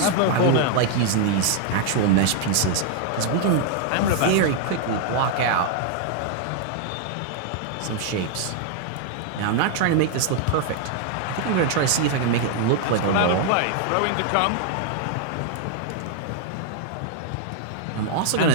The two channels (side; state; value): both; different; correlation 0.00